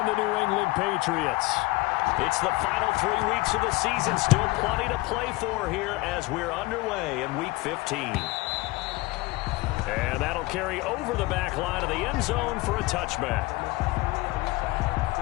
the New England Patriots. It's the final 3 weeks of the season. Still plenty to play for here as we're underway in Week 15. And that'll carry over the back line of the end zone for a touchback.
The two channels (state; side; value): quieter; right; 21.7 dB